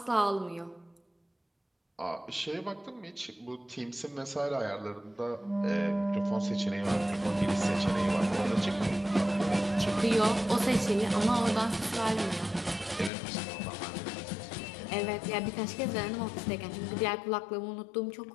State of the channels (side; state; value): right; drops out; at 13.1 s